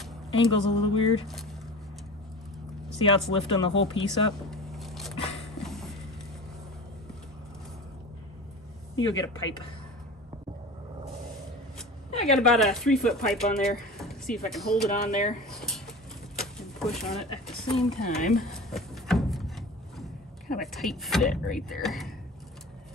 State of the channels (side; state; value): both; normal; correlation 0.35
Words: Angle's a little weird. See how it's lifting the whole piece up? You go get a pipe. I got about a 3-foot pipe on there. See if I can hold it on there and push on it at the same time. Kind of a tight fit right there.